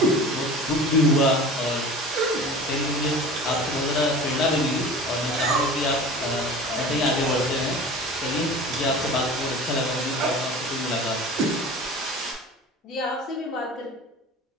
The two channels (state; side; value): normal; both; correlation 0.38